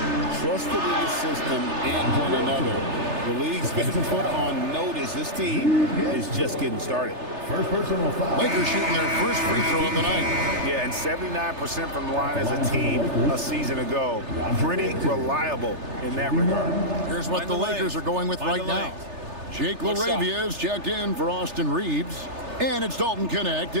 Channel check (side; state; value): left; late; 3.3 ms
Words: trusted in the system and one another. The league's been put on notice. This team is just getting started. First personal foul. Lakers shooting their first free throw of the night. Yeah, and 79% from the line as a team a season ago. Pretty reliable in that regard. Here's what the Lakers are going with right now. Jake LaRavia is checked in for Austin Reeves. And it's Dalton Connect